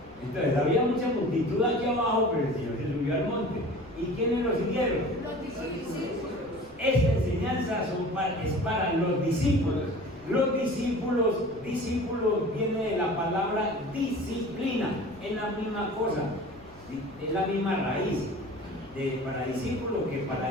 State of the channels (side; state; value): left; noise; rumble, 25 dB below the sound